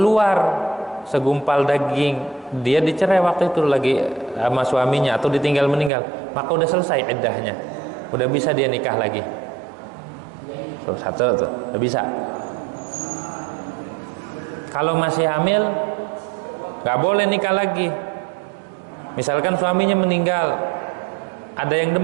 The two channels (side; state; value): left; drops out; at 5.9 s